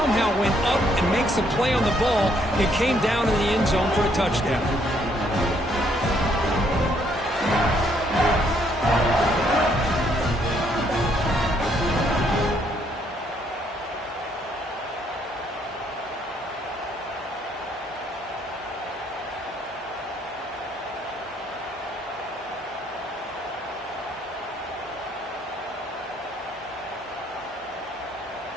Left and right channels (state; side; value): normal; both; correlation 0.69